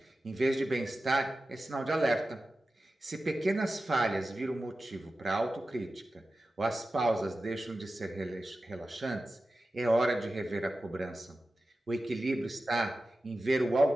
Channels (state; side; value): normal; both; correlation 0.93